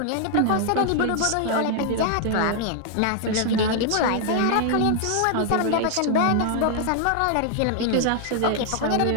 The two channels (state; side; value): different; both; correlation 0.00